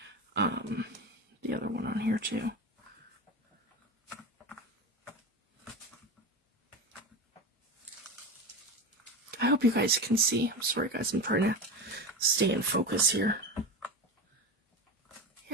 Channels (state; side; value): normal; both; correlation 0.23